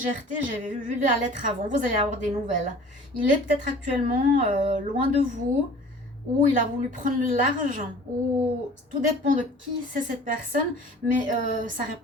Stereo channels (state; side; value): normal; both; correlation 0.46